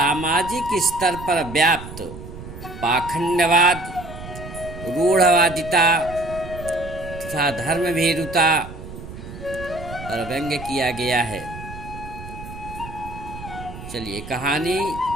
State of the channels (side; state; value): right; noise; rumble, 12 dB below the sound